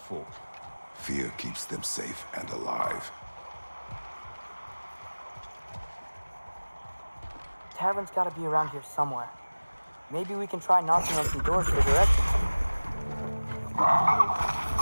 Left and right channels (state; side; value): inverted; both; correlation -1.00